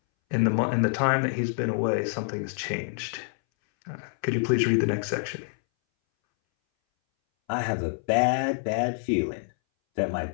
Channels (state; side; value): silent; right; 60 dB below the other